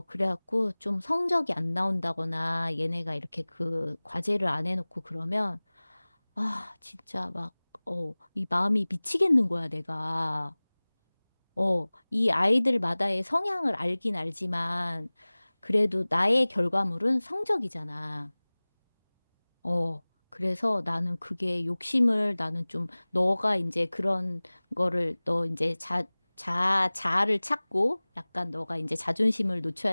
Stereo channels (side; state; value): both; inverted; correlation -1.00